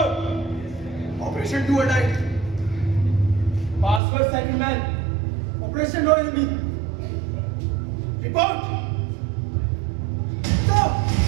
Operation Do or Die. Password second man. Operation No Enemy. Report! Sir!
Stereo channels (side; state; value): left; drops out; at 4.0 s